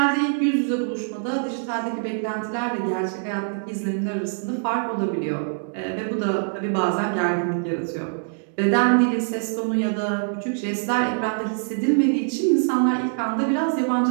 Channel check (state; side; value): silent; left; digital silence